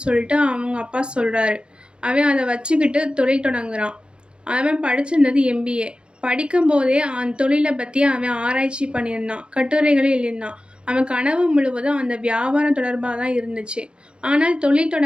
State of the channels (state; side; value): late; left; 0.054 ms